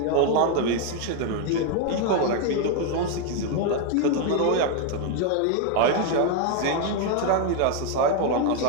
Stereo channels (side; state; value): both; different; correlation 0.01